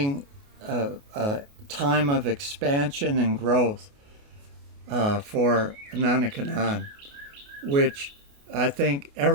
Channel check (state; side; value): late; left; 28 ms